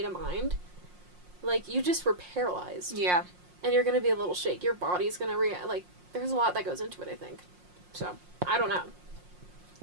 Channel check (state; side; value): late; left; 5.6 ms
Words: of mind, you just were paralyzed. Yeah. And you're going to be a little shake. Your body's going to react. There's a lot that goes into it, I think. So, I don't know.